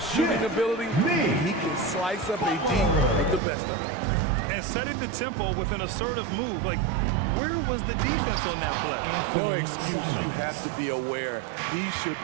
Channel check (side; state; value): left; drops out; at 3.4 s